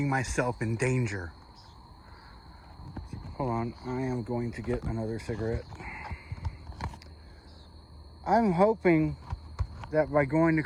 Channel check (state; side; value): identical; both; correlation 1.00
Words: myself in danger. Hold on, I am going to get another cigarette. I'm hoping that by going to